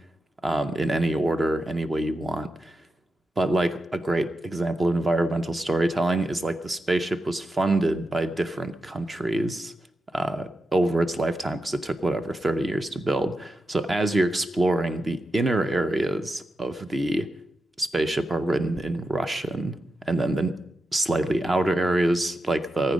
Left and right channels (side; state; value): both; normal; correlation 0.89